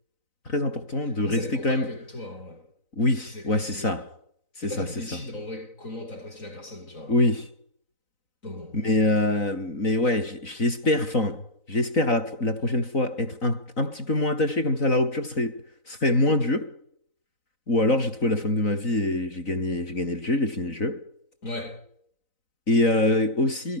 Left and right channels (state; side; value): late; right; 3.9 ms